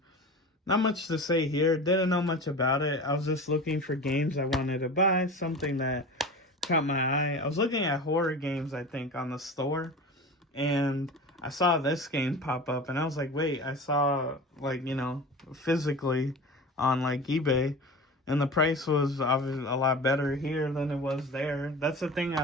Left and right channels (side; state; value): both; normal; correlation 0.33